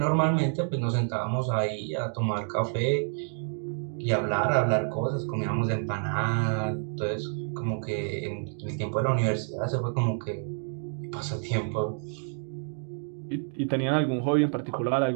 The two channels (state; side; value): silent; left; 59 dB below the other